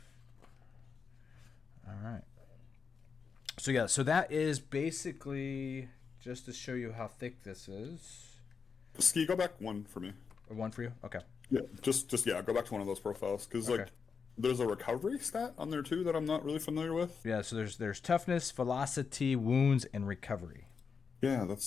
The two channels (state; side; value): quieter; right; 5.8 dB